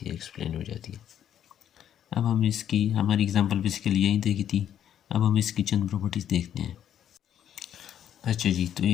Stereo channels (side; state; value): right; quieter; 10.1 dB